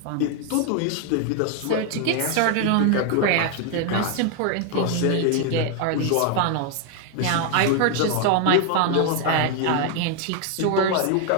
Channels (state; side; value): different; both; correlation 0.01